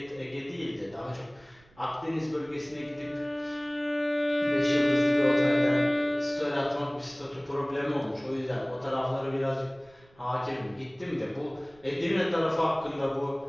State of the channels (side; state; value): right; noise; rumble, 29 dB below the sound